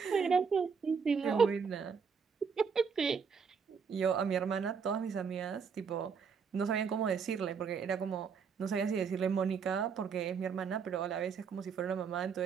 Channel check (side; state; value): left; quieter; 6.0 dB